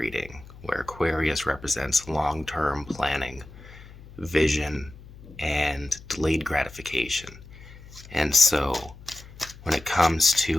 where Aquarius represents long-term planning, vision, and delayed gratification. And so when it comes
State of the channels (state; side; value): noise; left; hum, 19 dB below the sound